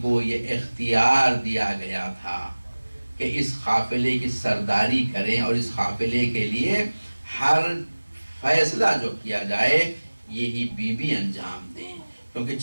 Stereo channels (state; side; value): inverted; both; correlation -1.00